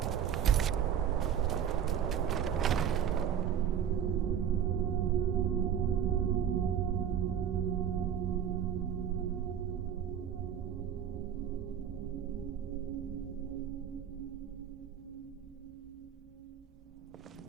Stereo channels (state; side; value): quieter; left; 8.8 dB